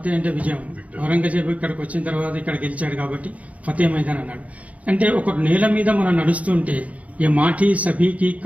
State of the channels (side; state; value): left; late; 0.069 ms